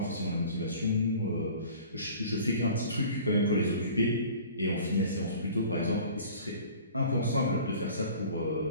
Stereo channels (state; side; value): inverted; both; correlation -0.45